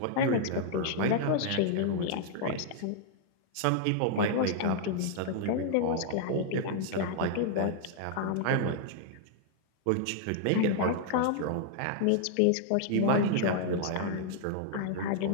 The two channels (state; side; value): different; both; correlation -0.01